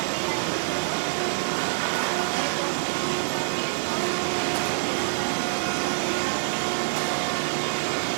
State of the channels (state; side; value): silent; left; 61 dB below the other